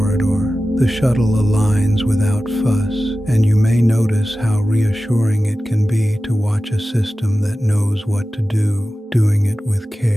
The shuttle aligns without fuss, and you may notice how reassuring it can be to watch a system that knows what to do, doing it with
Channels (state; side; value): normal; both; correlation 0.94